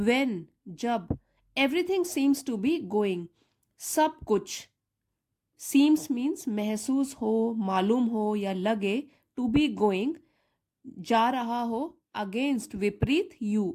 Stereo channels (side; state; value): both; identical; correlation 1.00